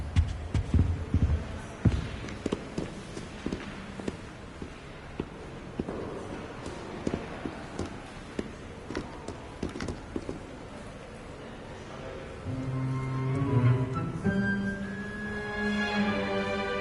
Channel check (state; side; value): identical; both; correlation 1.00